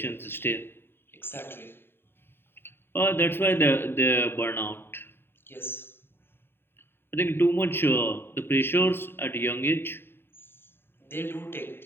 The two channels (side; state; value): right; late; 0.11 ms